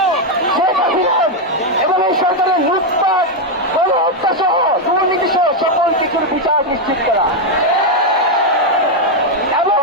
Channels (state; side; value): normal; both; correlation 0.02